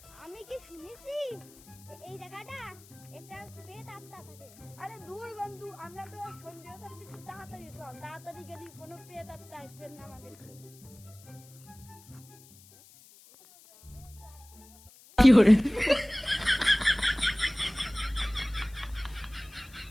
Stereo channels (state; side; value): noise; left; hiss, 23 dB below the sound